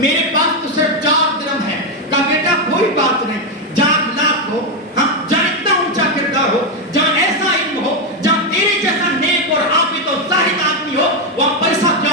میرے پاس تو صرف 4 درہم ہے۔ کہا بیٹا کوئی بات نہیں، جہاں اخلاق ہو، ہاں جہاں اتنا اونچا کردار ہو، جہاں ایسا علم ہو، جہاں تیرے جیسا نیک اور عابد اور زاہد آدمی ہو، وہاں پیسہ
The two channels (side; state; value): both; normal; correlation 0.05